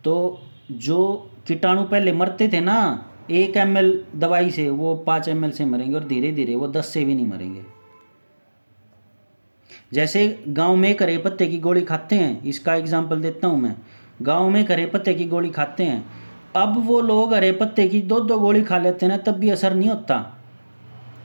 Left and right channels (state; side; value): inverted; both; correlation -1.00